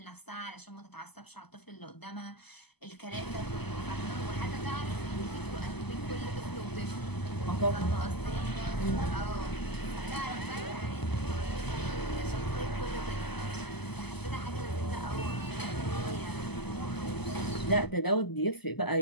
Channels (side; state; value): right; late; 0.98 ms